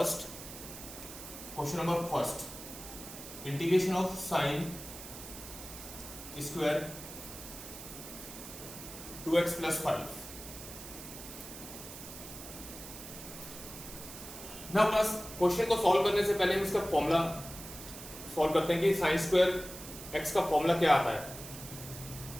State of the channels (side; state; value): right; noise; hiss, 12 dB below the sound